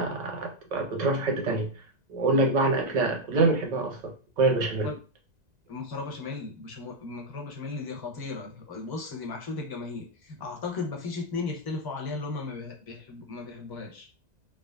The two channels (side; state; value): left; late; 2.0 ms